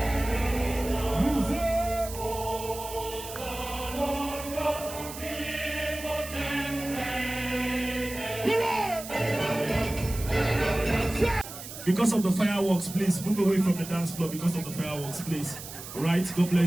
Because of the fireworks, please move away from the dance floor. Because of the fireworks, please. All right, God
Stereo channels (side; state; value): right; noise; hiss, 12 dB below the sound